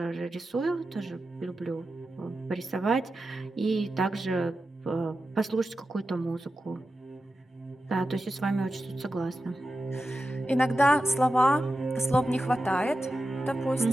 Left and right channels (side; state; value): both; normal; correlation 0.91